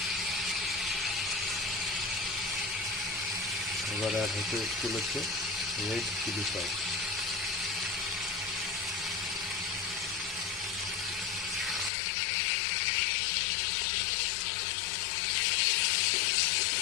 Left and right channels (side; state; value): right; drops out; at 11.9 s